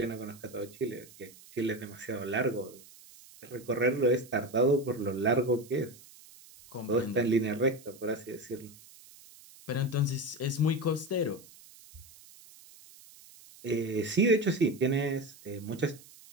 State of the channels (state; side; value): noise; right; hiss, 22 dB below the sound